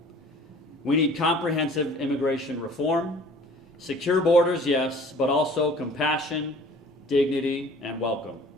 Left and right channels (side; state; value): both; normal; correlation 0.49